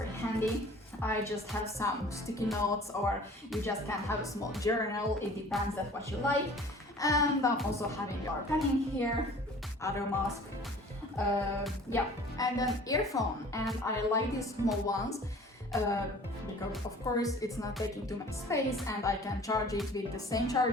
handy. I just have some sticky notes, or you just can have a small journal, it depends on what you like. And I'm also having your pen in here, other mask, yeah, and an earphone, and I like these small ones. Because of course it's not taking too much space, and I can charge it with the same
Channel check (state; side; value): normal; both; correlation 0.47